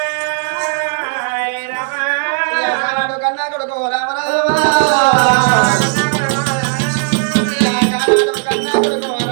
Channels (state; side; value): silent; left; 70 dB below the other